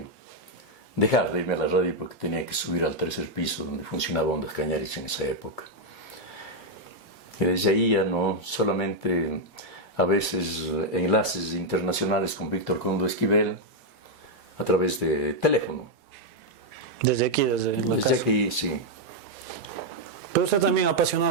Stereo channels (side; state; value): both; normal; correlation -0.01